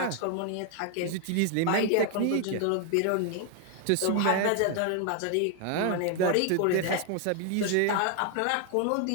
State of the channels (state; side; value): different; both; correlation 0.00